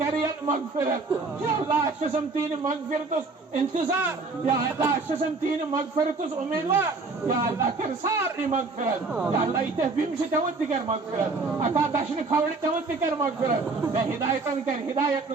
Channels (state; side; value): quieter; left; 3.9 dB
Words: مغفرت. یا اللہ اکشسم تین مغفرتس انتظار. یا اللہ اکشسم تین مغفرتس امیدوار. یا اللہ کر ساری مغفرت. یا اللہ ایتے بیمشی تیوت دکر مغفرت، اتا دشن کھوڑی تیوت دکر مغفرت. بے ہدایتن کر ہدایت